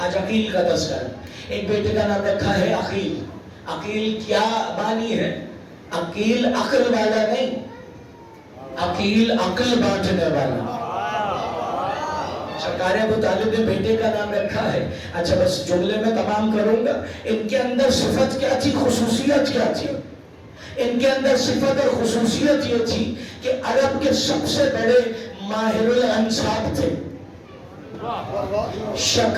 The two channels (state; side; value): identical; both; correlation 1.00